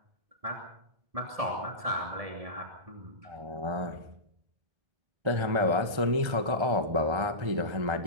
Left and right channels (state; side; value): late; left; 1.3 ms